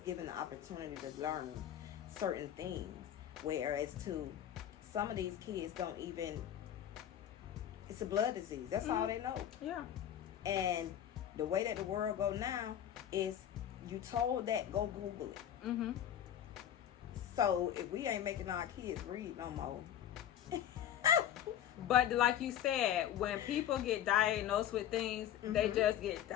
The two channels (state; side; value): quieter; right; 10.6 dB